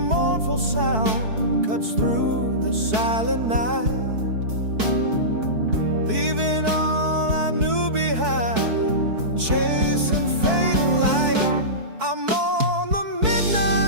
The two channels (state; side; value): late; left; 4.6 ms